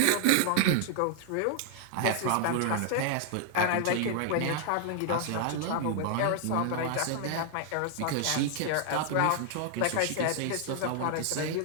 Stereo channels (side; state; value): both; different; correlation 0.00